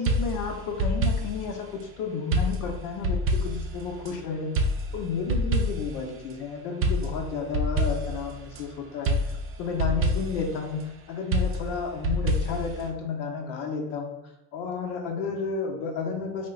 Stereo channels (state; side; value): normal; both; correlation 0.18